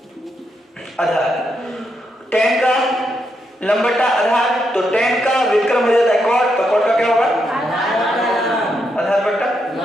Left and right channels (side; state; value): both; normal; correlation 0.81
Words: आधार। टेन का लंब बटा आधार, तो टेन का व्युत्क्रम हो जाता है कॉट, तो कॉट का क्या होगा? आधार बटा